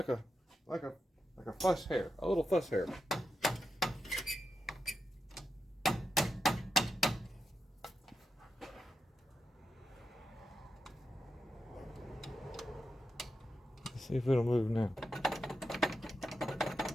a fuss hair, a little fuss hair. Let's see if it'll move now.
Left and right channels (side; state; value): both; normal; correlation 0.87